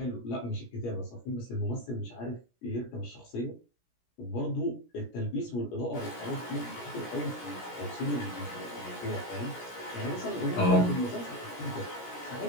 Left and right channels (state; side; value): late; right; 17 ms